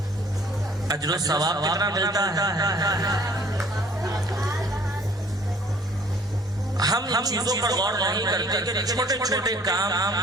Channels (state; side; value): normal; both; correlation 0.55